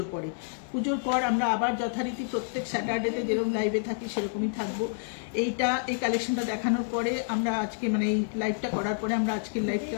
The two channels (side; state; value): right; silent; 59 dB below the other